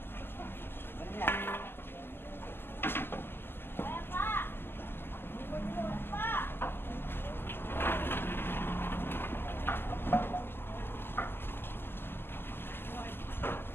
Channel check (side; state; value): right; late; 0.11 ms